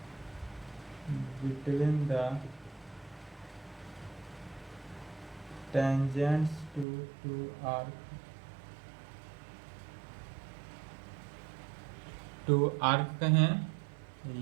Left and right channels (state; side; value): drops out; left; at 6.9 s